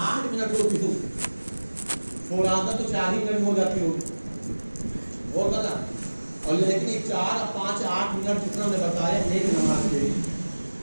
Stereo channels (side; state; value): both; inverted; correlation -1.00